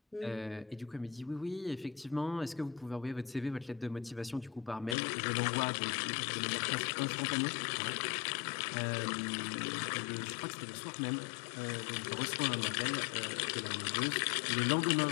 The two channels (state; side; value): drops out; right; at 5.0 s